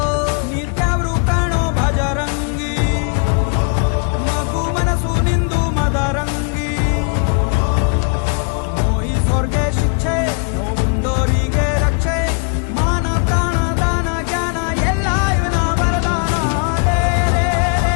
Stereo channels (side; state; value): right; quieter; 39.7 dB